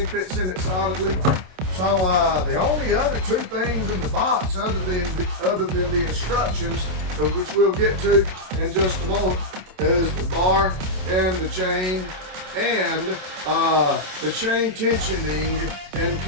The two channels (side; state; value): left; late; 27 ms